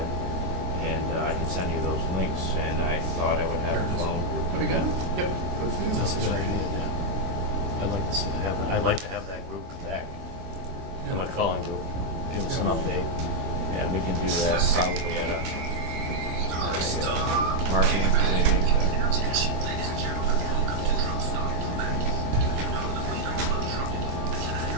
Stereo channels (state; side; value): late; left; 23 ms